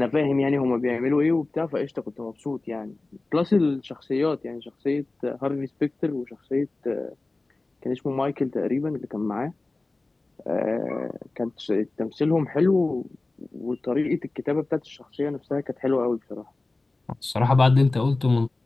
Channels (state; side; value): quieter; right; 3.2 dB